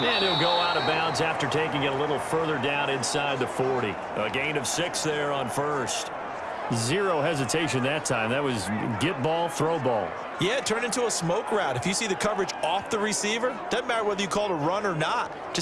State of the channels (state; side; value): identical; both; correlation 1.00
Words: he'll go out of bounds after taking it a little further down inside the 40. A gain of 6 there on first. Zero hesitation that time. That was get ball, throw ball. Yeah, it turned into a smoke route. If you see the coverage off the receiver, doesn't matter whether you call it a run or not.